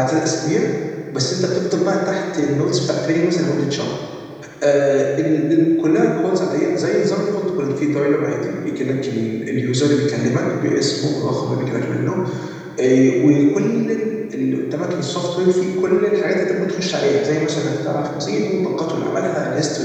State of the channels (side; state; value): both; identical; correlation 1.00